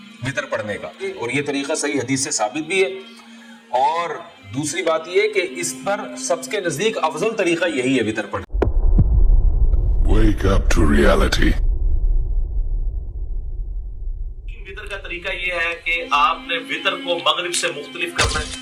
وتر پڑھنے کا، اور یہ طریقہ صحیح حدیث سے ثابت بھی ہے. اور دوسری بات یہ کہ اس پر سب کے نزدیک افضل طریقہ یہی ہے وتر پڑھنے. Wake up to reality. وتر کا طریقہ یہ ہے کہ آپ نے وتر کو مغرب سے مختلف کرنا ہے،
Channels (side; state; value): both; identical; correlation 1.00